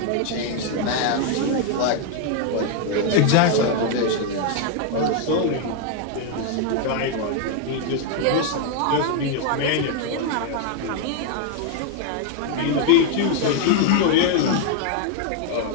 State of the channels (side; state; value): both; different; correlation 0.00